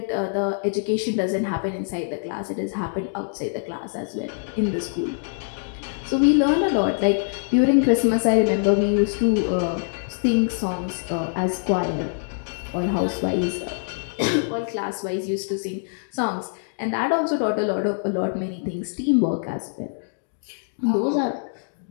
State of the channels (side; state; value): right; silent; digital silence